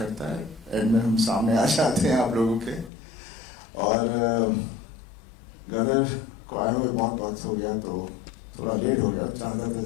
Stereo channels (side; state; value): right; drops out; at 2.9 s